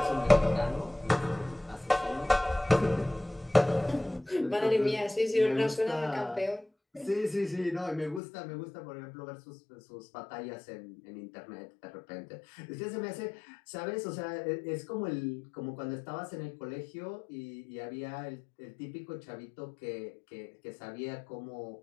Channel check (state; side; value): drops out; right; at 8.2 s